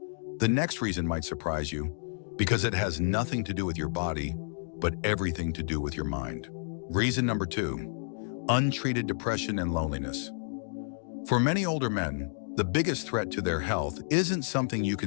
The next reason might surprise you, because it has nothing to do with your body, but everything to do with your mind. Reason number 2, untreated depression and loneliness. For many older men, the biggest threat to their health isn't something you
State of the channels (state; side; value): silent; right; digital silence